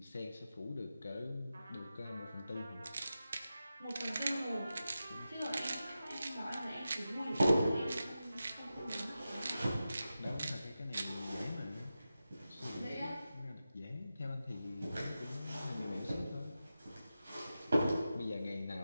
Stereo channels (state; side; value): inverted; both; correlation -0.92